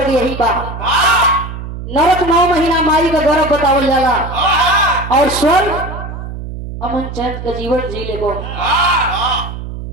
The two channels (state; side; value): noise; right; hum, 9 dB below the sound